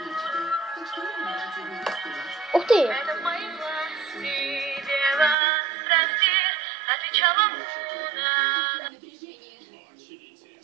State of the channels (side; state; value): left; drops out; at 5.4 s